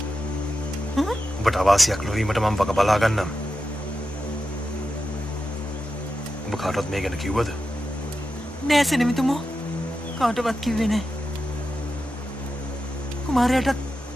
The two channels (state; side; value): normal; both; correlation 0.90